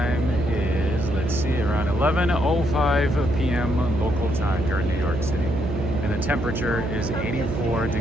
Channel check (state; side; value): noise; right; hum, 4 dB below the sound